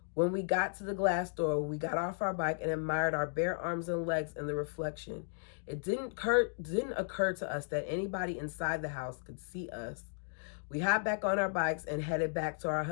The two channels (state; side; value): silent; right; digital silence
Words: When we got to the glass door, we got off our bike and admired our bare arms and legs in the reflection. It didn't occur to us that anybody inside the house could see us. We hopped back on our bikes and headed back to our